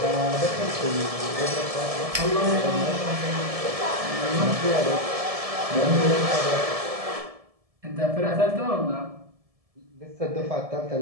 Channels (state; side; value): late; left; 1.7 ms